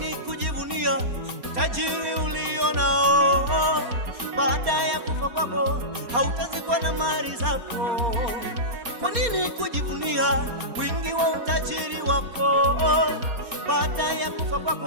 kujivunia utajiri ulio nao? Baada ya kufa kwako hautazikwa na mali zako. Kwa nini kujivunia wingi wa utajiri wako? Baada ya kufa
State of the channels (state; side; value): late; left; 4.3 ms